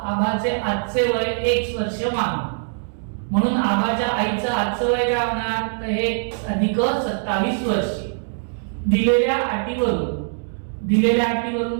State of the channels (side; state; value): left; silent; digital silence